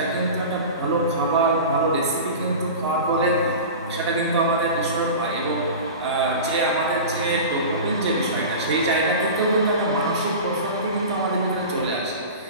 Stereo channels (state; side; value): inverted; both; correlation -0.32